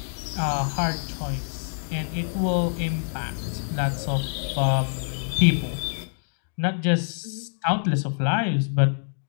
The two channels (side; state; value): right; silent; digital silence